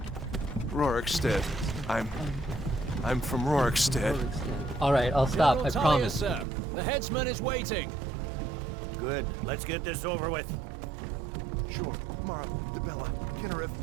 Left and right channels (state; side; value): drops out; left; at 6.5 s